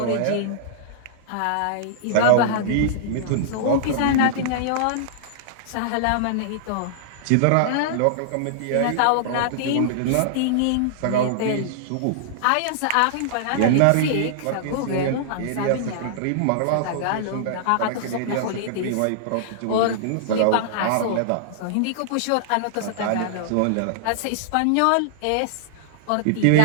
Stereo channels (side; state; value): both; different; correlation -0.01